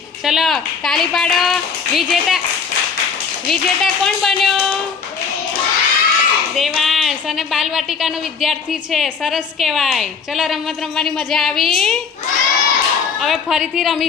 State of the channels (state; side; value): quieter; right; 5.9 dB